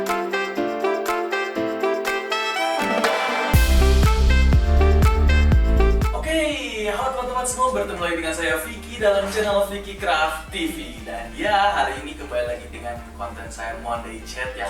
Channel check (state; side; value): identical; both; correlation 1.00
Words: Semua bertemu lagi dengan saya Vicky dalam channel Vicky Craft TV. Dan ya, hari ini kembali lagi dengan konten saya Monday Chat yang